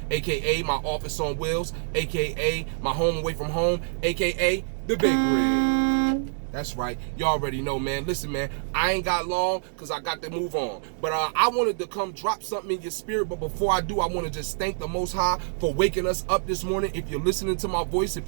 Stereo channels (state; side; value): silent; left; digital silence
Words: aka my office on wheels, aka my home away from home, aka the Big Rig. That's right, you already know, man. Listen, man, I ain't got long because I got to move on. But I wanted to come drop something in your spirit. But before I do, I want to just thank the Most High for waking us up this morning. If you're listening to my voice,